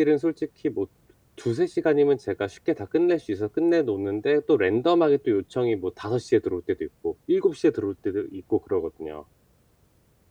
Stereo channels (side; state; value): both; identical; correlation 1.00